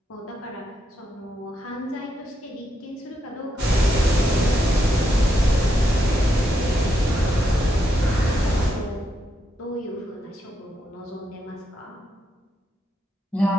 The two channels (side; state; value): both; normal; correlation 0.81